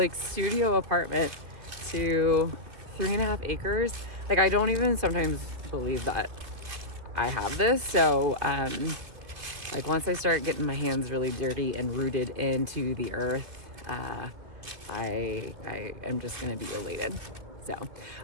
studio apartment to 3.5 acres. I don't even sometimes believe that I have this. So once I start getting my hands really dirty and rooted into the earth, I am just gonna be elated. So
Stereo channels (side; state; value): left; late; 2.7 ms